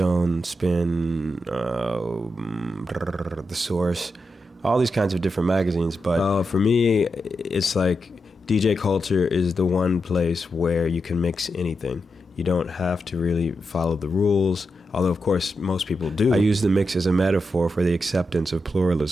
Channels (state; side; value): normal; both; correlation 0.87